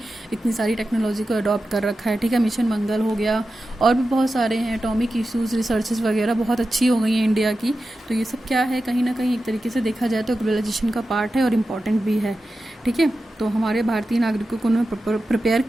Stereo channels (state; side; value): normal; both; correlation 0.92